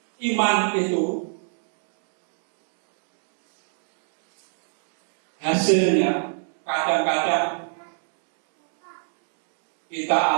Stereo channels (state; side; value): silent; left; digital silence